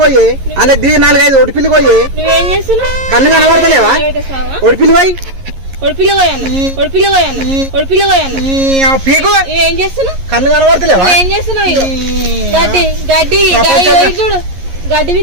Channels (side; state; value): left; late; 11 ms